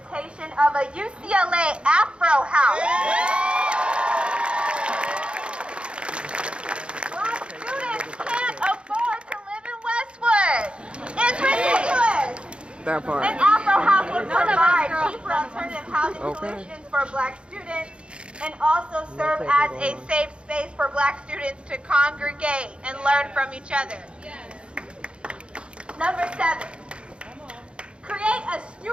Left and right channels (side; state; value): left; late; 0.057 ms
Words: of a UCLA Afro House. Black students can't afford to live in Westwood. It's ridiculous. That part. An Afro House would provide cheaper alternative housing solutions for Black students and also serve as a safe space for Black students to congregate and learn from each other. Number 7, create a